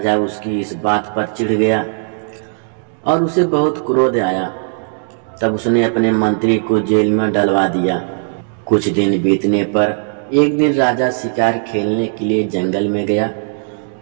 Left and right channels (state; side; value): silent; left; digital silence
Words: उसकी इस बात पर चिढ़ गया और उसे बहुत क्रोध आया। तब उसने अपने मंत्री को जेल में डलवा दिया। कुछ दिन बीतने पर एक दिन राजा शिकार खेलने के लिए जंगल में गया।